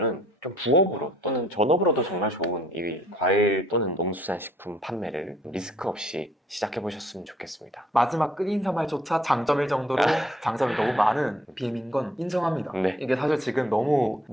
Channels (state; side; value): normal; both; correlation 0.61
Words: 좀 부업으로 또는 전업으로도 정말 좋은 이 과일 또는 농수산식품 판매를 리스크 없이 시작해 보셨으면 좋겠습니다. 마지막 끝인사말조차 장점일 정도로 장점이 너무 많은 BM인 건 인정합니다. 네. 이게 사실 지금 너무